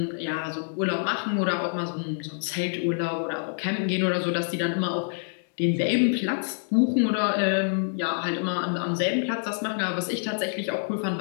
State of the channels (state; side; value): silent; right; digital silence